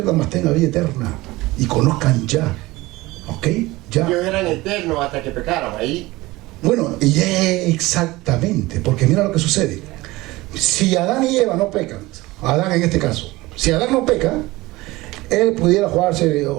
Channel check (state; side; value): quieter; left; 20.0 dB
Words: más tengan vida eterna y conozcan ya. ¿Ok? Ya. Ellos eran eternos hasta que pecaron, ahí Bueno, y exactamente, porque mira lo que sucede. Si Adán y Eva no pecan, Adán en este caso, si Adán no peca, él pudiera jugarse,